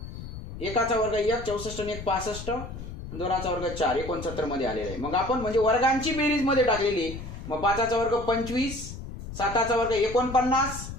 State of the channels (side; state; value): left; noise; rumble, 10 dB below the sound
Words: एकाचा वर्ग 1 64 आणि 1 65, दोनाचा वर्ग 4 69 मध्ये आलेला आहे. मग आपण म्हणजे वर्गांची बेरीज मध्ये टाकलेली. मग 5चा वर्ग 25, 7चा वर्ग 49